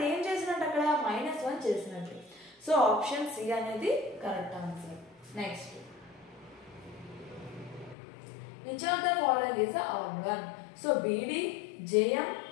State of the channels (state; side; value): drops out; right; at 8.0 s